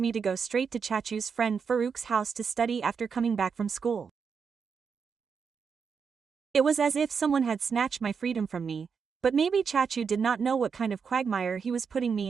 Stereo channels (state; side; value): quieter; left; 6.1 dB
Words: to go straight to Chachu's friend Farouk's house to study after coming back from school. It was as if someone had snatched my freedom from me, but maybe Chachu did not know what kind of quagmire he was putting